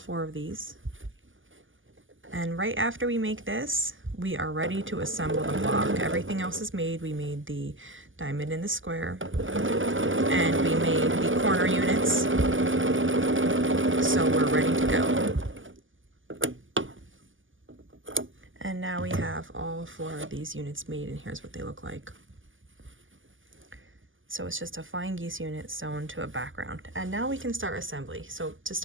of these. And right after we make this, we are ready to assemble the block. Everything else is made. We made the diamond in the square, and we made the corner units. So we're ready to go. And now we have all 4 of these units made, and here's what they look like. So it's just a flying geese unit sewn to a background. And now we can start assembly. So to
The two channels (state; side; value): late; left; 0.58 ms